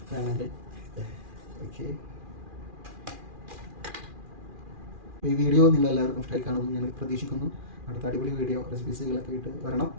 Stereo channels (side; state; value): left; late; 2.4 ms